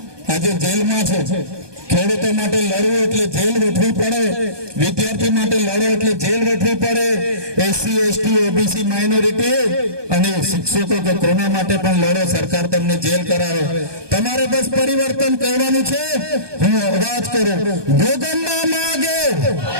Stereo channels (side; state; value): left; late; 1.2 ms